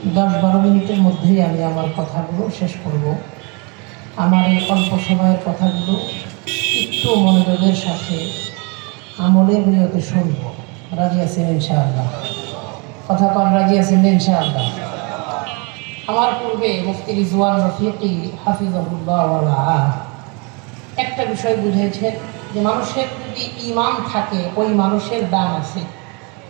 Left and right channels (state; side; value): quieter; left; 31.6 dB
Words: 10-12 মিনিটের মধ্যেই আমি আমার কথাগুলো শেষ করব। আমার এই অল্প সময়ের কথাগুলো একটু মনোযোগের সাথে আমলের নিয়তে শুনব। রাজি আছেন ইনশাআল্লাহ? কথা কন, রাজি আছেন ইনশাআল্লাহ? আমার পূর্বে মুফতি রিজওয়ান রফিকি হাফিজাহুল্লাহ ওয়া রাআহ একটা বিষয় বুঝেছেন যে মানুষের যদি ঈমান থাকে ওই মানুষের দাম আছে।